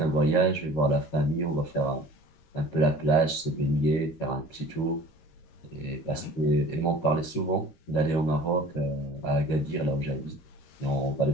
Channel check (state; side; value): late; right; 13 ms